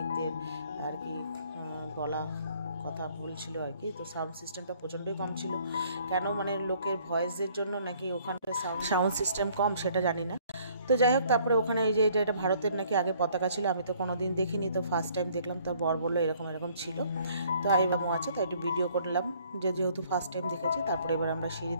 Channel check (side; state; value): both; inverted; correlation -0.61